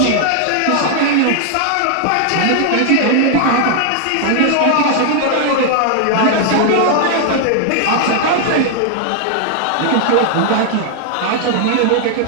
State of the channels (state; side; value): different; both; correlation 0.00